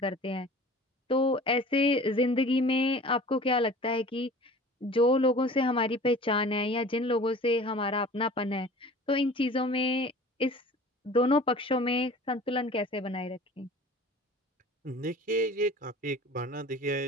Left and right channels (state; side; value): normal; both; correlation 0.43